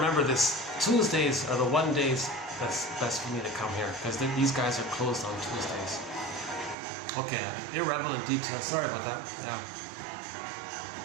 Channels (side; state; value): left; drops out; at 6.8 s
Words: this. Tuesdays are the one days that's best for me to come here because these guys are closed on Tuesdays. Okay, irrelevant detail. Sorry about that. Yeah.